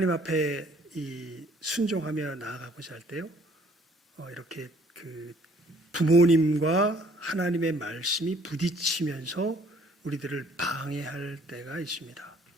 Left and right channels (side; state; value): both; normal; correlation 0.59